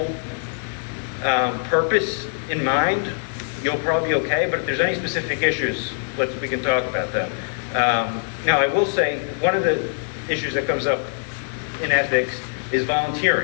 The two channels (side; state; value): right; silent; digital silence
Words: purpose in mind, you'll probably be okay. But if there's any specific issues, we can talk about them. Now, I will say one of the issues that comes up in ethics is